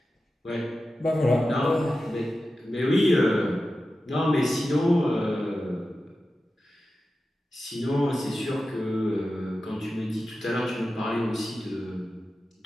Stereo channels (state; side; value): normal; both; correlation 0.93